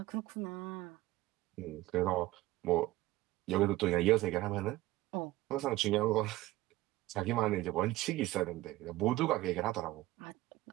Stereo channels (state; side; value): quieter; left; 17.5 dB